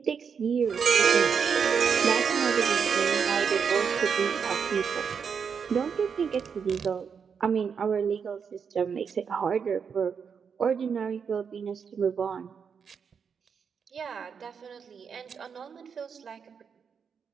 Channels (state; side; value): quieter; left; 6.5 dB